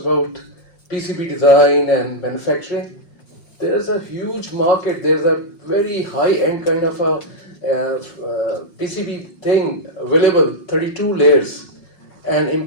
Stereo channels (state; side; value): late; right; 5.6 ms